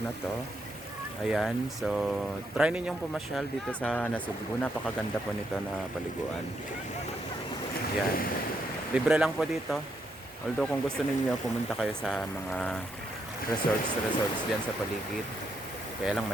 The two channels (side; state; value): both; normal; correlation 0.78